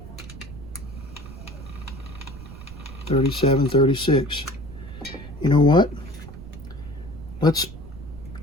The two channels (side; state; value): right; noise; rumble, 14 dB below the sound